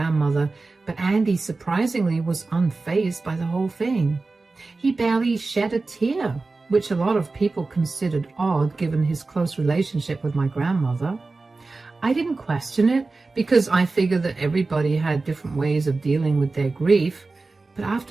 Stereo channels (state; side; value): quieter; left; 3.6 dB